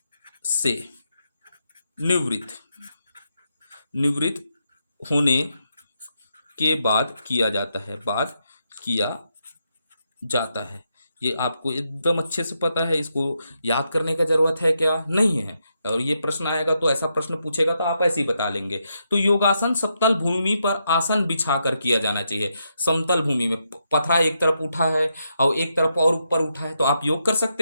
से निवृत्त निवृत्त होने के बाद किया जाता है, बाद किया जाता है। ये आपको एकदम अच्छे से पता है, इसको याद करने का जरूरत है क्या, नहीं है। और ये प्रश्न आएगा तो ऐसा प्रश्न पूछेगा तो आप ऐसे ही बता लेंगे। तो योगासन समतल भूमि पर आसन बिछाकर किया जाना चाहिए। समतल भूमि में पथरा एक तरफ उठा है और एक तरफ और ऊपर उठा है, तो आप योग कर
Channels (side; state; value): both; inverted; correlation -0.82